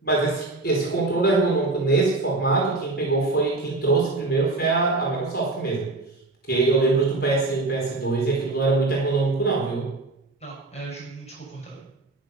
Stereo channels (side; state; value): left; quieter; 3.1 dB